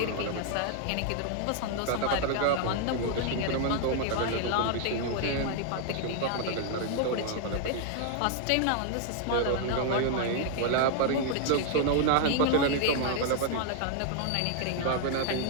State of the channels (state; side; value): different; both; correlation 0.00